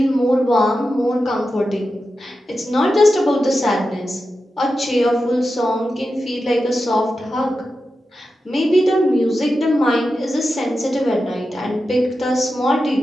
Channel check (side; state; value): both; normal; correlation 0.91